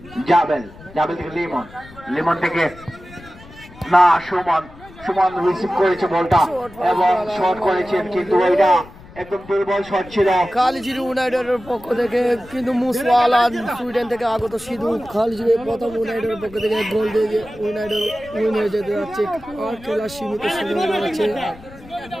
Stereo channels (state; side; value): noise; left; rumble, 20 dB below the sound